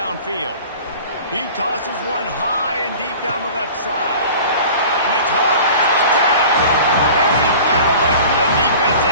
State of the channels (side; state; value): both; inverted; correlation -0.42